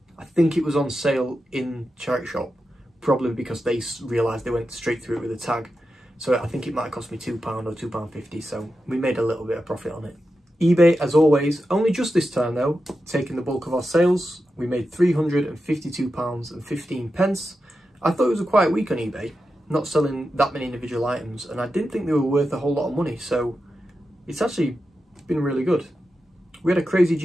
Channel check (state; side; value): normal; both; correlation 0.90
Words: I think it was on sale in charity shop, probably because they realised they went straight through it with a tag. So I think it might have cost me £2 or £2.50, so we made a little bit of profit on it. eBay, as always, only just this time though, taking the bulk of our sales. We made £352.15. I thought it was a quiet week on eBay, not selling that many individual items, and I didn't think they were worth a whole lot of money, so it's actually been really good. We had a crazy